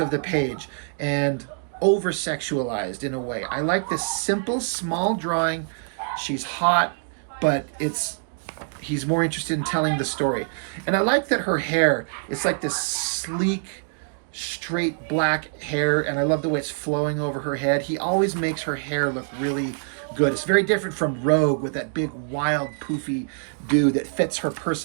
the page and over-sexualized in a way. I like this simple, small drawing. She's hot, but he's more interested in telling the story. And I like that her hair, it's like this sleek, straight black hair, and I love the way it's flowing over her head. He always makes her hair look really good. It's very different from Rogue with that big, wild, poofy dude that fits her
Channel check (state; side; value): silent; left; digital silence